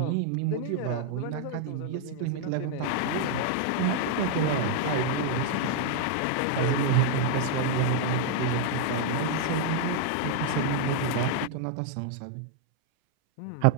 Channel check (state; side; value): different; both; correlation 0.00